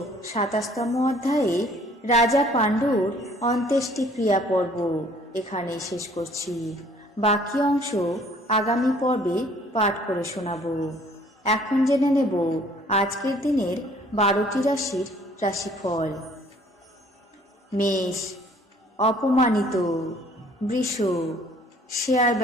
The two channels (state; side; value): normal; both; correlation 0.57